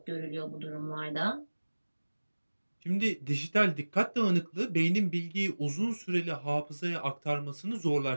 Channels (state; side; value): inverted; both; correlation -1.00